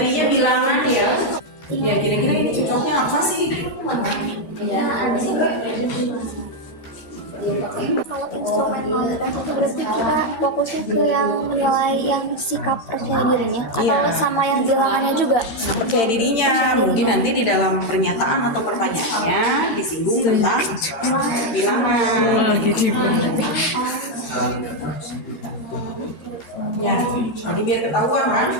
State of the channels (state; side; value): late; right; 13 ms